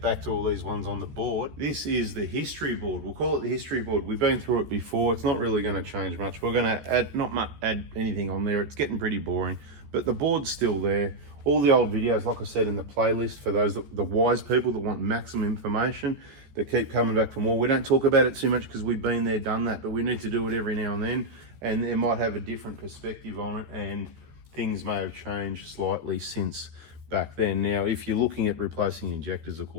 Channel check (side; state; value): left; late; 14 ms